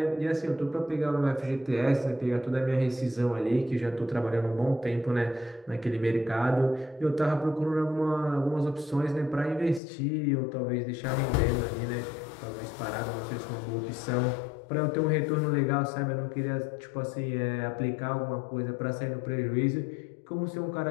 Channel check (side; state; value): right; drops out; at 9.8 s